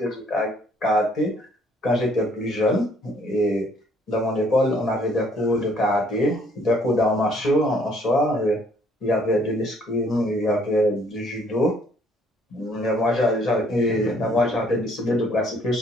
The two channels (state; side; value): normal; both; correlation 0.63